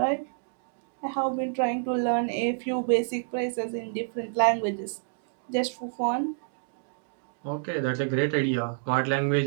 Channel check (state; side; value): silent; left; digital silence